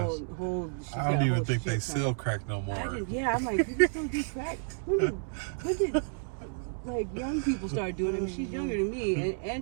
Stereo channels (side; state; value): left; silent; digital silence